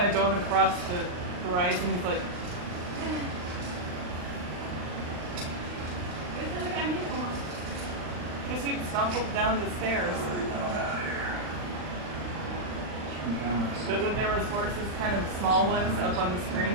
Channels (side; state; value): left; late; 39 ms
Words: of going across the horizon. He's like, because he stumbled down the stairs. But when there was horses, kind of small ones, up on the